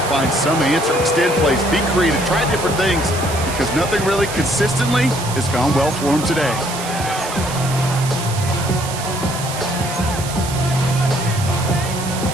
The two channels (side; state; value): right; noise; hiss, 9 dB below the sound